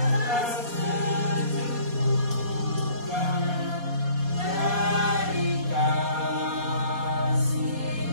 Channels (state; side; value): late; left; 4.2 ms